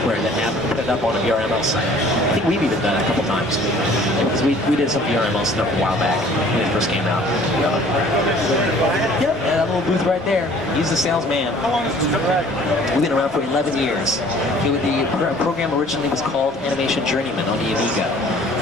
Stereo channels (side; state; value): both; normal; correlation 0.53